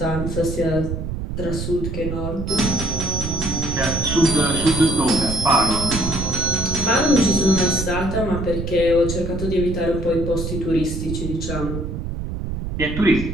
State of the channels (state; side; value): noise; right; rumble, 5 dB below the sound